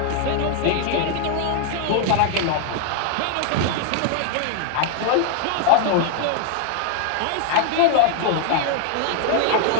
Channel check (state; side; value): different; both; correlation 0.00